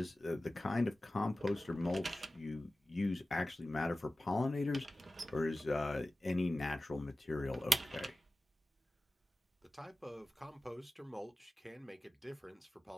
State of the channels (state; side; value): normal; both; correlation 0.95